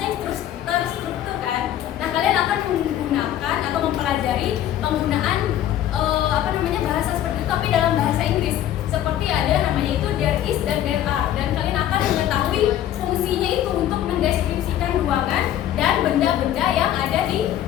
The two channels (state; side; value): quieter; right; 11.7 dB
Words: yang terstruktur kan. Nah, kalian akan menggunakan atau mempelajari penggunaan bahasa seperti itu tapi dalam bahasa Inggris. Seperti ada namanya itu there is dan there are, dan kalian akan mengetahui fungsinya itu untuk mendeskripsikan ruangan dan benda-benda yang ada di